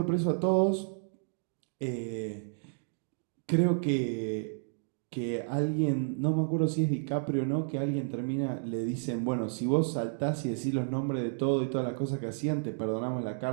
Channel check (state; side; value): silent; left; digital silence